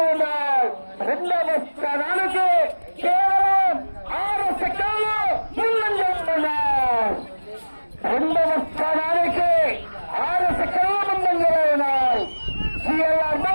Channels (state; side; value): inverted; both; correlation -1.00